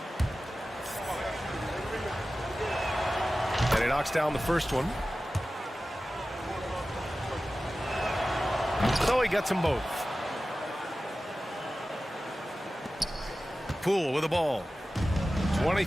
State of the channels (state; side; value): normal; both; correlation 0.95